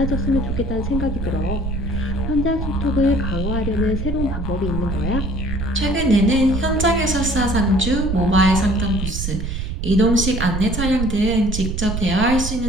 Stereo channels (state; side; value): noise; right; rumble, 3 dB below the sound